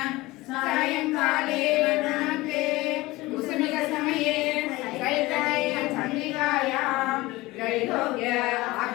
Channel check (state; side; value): quieter; right; 19.9 dB